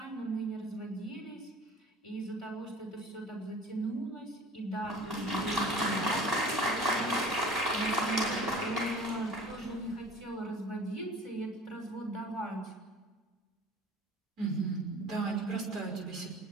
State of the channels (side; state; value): both; normal; correlation 0.44